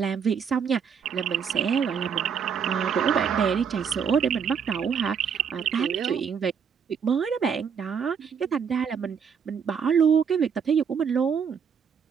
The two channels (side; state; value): left; quieter; 6.9 dB